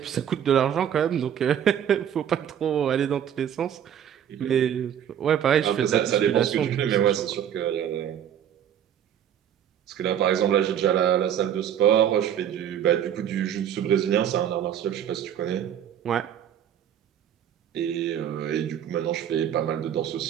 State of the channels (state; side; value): quieter; left; 9.6 dB